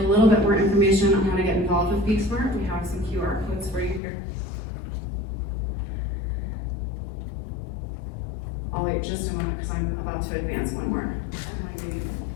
little bit more information on how to get involved with Be Smart, we have some QR codes for you here. I'll wait just a moment because I'm about to advance one more.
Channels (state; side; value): drops out; right; at 4.0 s